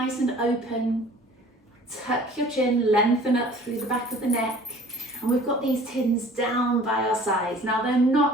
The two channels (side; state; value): both; normal; correlation 0.49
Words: and open. Tuck your chin, lengthen up through the back of the neck. And we've got these tins down by our sides. Now they're